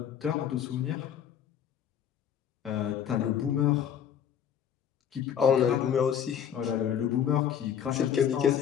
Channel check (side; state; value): right; quieter; 8.9 dB